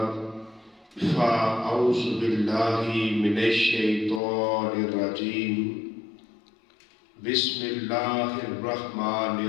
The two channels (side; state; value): right; drops out; at 4.2 s